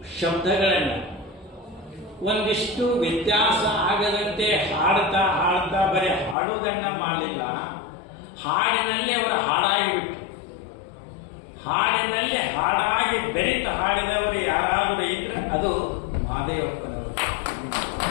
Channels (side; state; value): right; drops out; at 6.4 s